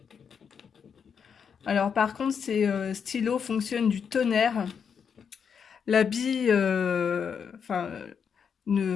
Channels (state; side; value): quieter; right; 6.9 dB